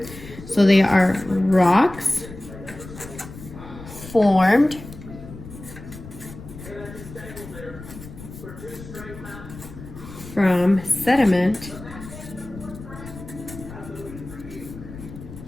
So they are rocks formed from sediment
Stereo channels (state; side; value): noise; left; rumble, 14 dB below the sound